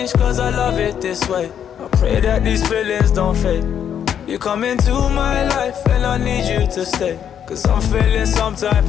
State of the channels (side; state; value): right; quieter; 8.9 dB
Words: cause I love it this way. I pray that these feelings don't fade. You come into my life and I need you to stay, cause I'm feeling some type